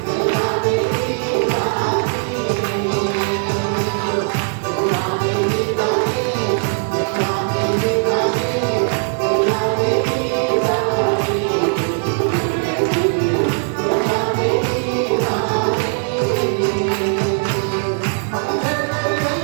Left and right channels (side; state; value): left; silent; 56 dB below the other